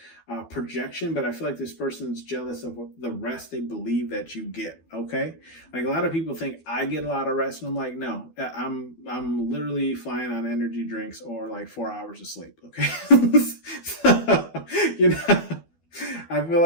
projection, but I feel like this person's jealous of the rest they believe that you get. Okay, like a lot of people think I get a lot of rest, and I'm like, no, I'm literally flying on energy drinks or like 4 hours of sleep. Okay, so, you know. I feel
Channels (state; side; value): late; right; 12 ms